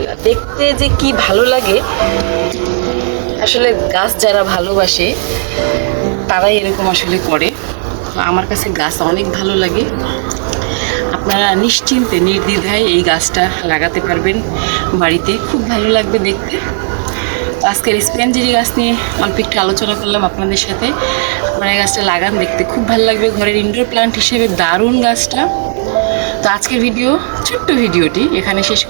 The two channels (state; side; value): silent; left; digital silence